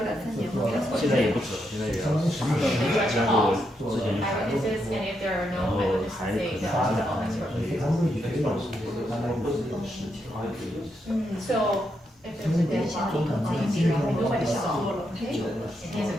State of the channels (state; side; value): normal; both; correlation 0.81